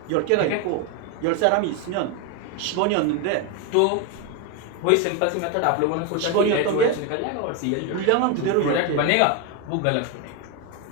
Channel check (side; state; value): both; different; correlation 0.02